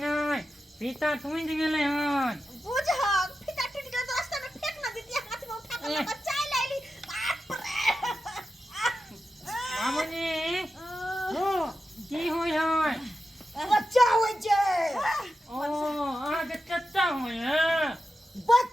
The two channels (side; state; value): both; normal; correlation 0.91